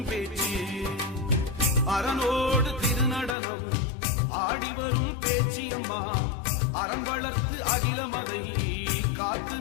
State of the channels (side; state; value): right; drops out; at 3.4 s